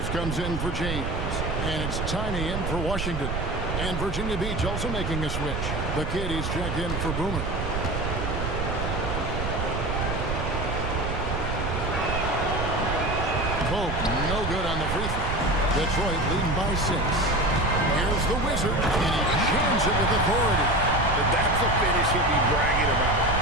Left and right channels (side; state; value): right; noise; rumble, 3 dB below the sound